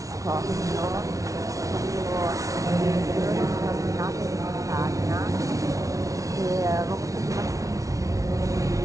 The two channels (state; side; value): late; left; 0.16 ms